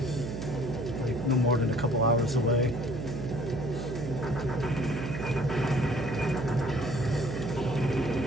like no more than a couple hours away.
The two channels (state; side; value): noise; right; hum, 5 dB below the sound